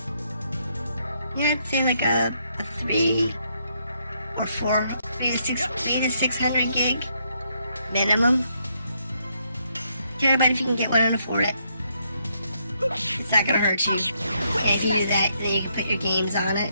yeah, I'd say like a 3 or 4, maybe 3 to 600 gig minimum. Terabyte if you can get one and afford it. It's not gonna hurt you. And if you do that, then you can put your games on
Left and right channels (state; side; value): inverted; both; correlation -0.75